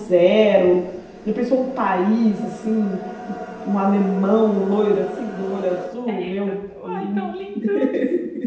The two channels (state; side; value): identical; both; correlation 1.00